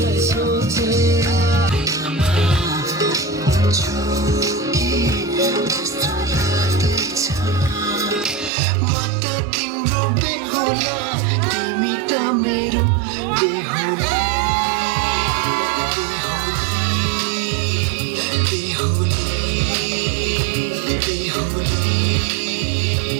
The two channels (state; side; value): drops out; left; at 8.5 s